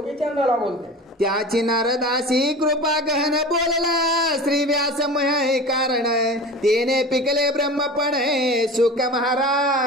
बोलते. त्याची नारदासी कृपा गहन बोलला, श्री व्यासमय कारण तेने पिकले ब्रह्मपण सुख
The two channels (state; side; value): normal; both; correlation 0.33